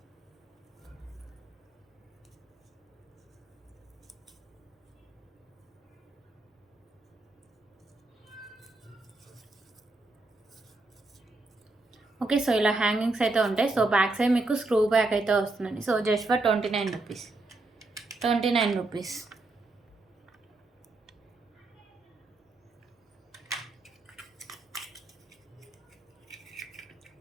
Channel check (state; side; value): quieter; left; 3.1 dB